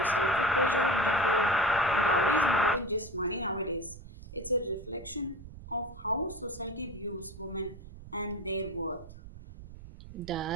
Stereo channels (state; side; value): noise; right; rumble, 16 dB below the sound